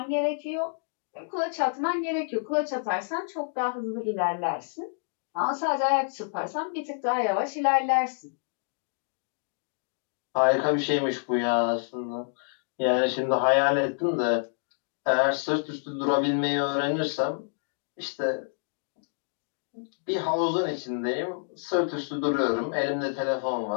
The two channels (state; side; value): silent; right; digital silence